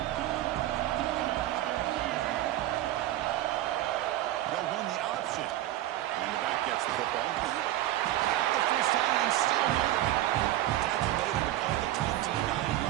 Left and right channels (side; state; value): left; quieter; 14.4 dB